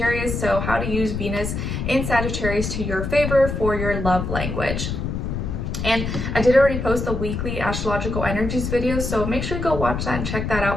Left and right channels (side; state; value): left; noise; rumble, 3 dB below the sound